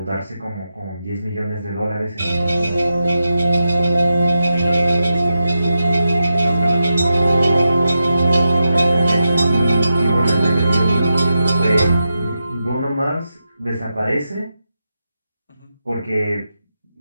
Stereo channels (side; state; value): both; inverted; correlation -0.89